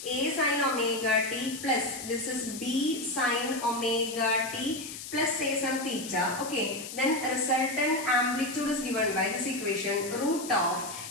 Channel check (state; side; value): noise; left; hiss, 10 dB below the sound